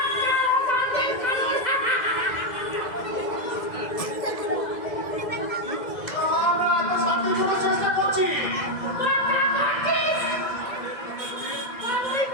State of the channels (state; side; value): late; right; 2.0 ms